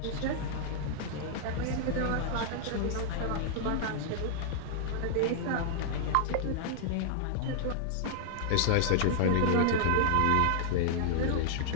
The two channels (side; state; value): both; different; correlation -0.01